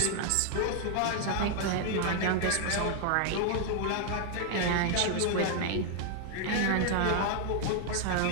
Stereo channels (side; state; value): both; different; correlation 0.00